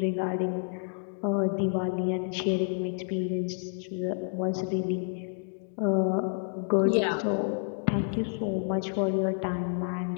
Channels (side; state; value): right; silent; 56 dB below the other